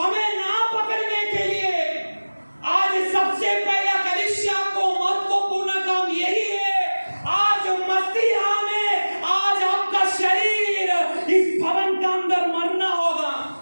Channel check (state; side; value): inverted; both; correlation -1.00